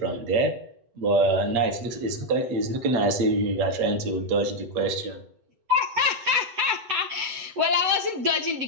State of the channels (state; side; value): late; left; 8.1 ms